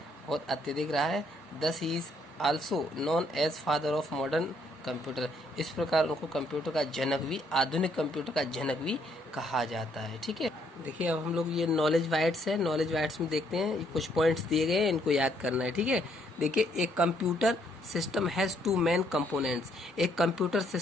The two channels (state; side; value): normal; both; correlation 0.69